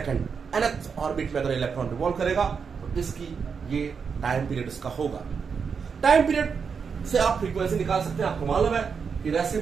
nth orbit में अगर इलेक्ट्रॉन रिवॉल्व करेगा तो इसकी ये टाइम पीरियड इसका होगा। टाइम पीरियड से आप फ्रीक्वेंसी निकाल सकते हैं। आपको मालूम है कि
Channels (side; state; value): left; quieter; 6.0 dB